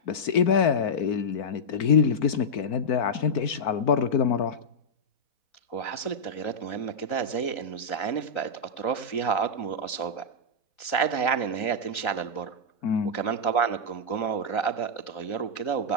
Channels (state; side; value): late; right; 3.9 ms